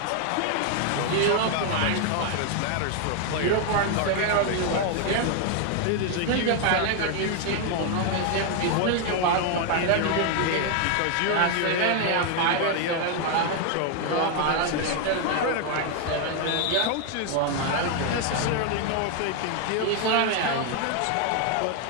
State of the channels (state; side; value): different; both; correlation 0.00